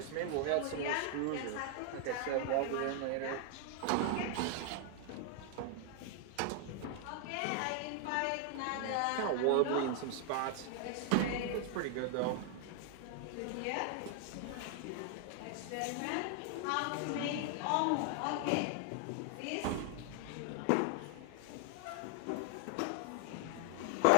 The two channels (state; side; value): different; both; correlation 0.00